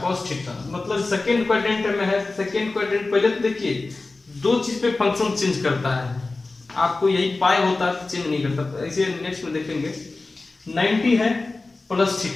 cos theta. मतलब सेकेंड क्वाड्रेंट में है, सेकेंड क्वाड्रेंट पहले तो देखिए दो चीज पे फंक्शन चेंज करता है, आपको यही पाई होता है चेंज नहीं करता। ऐसे नेक्स्ट में देखेंगे 90 है प्लस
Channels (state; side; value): quieter; right; 3.4 dB